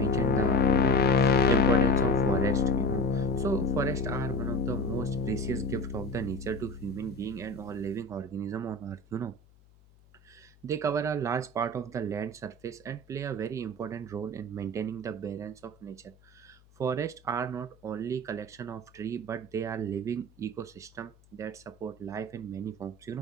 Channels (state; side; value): noise; left; hum, 29 dB below the sound